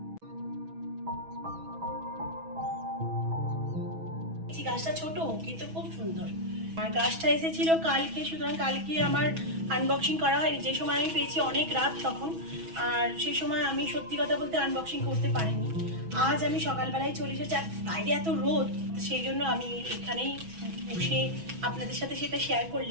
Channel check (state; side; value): late; left; 6.1 ms